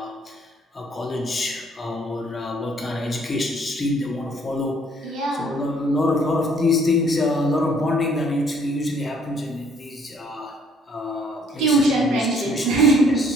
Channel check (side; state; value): both; normal; correlation 0.61